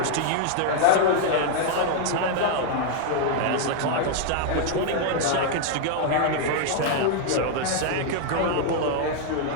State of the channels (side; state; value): both; different; correlation 0.00